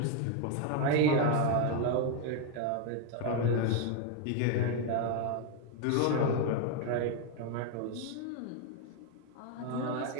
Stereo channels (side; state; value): both; different; correlation 0.01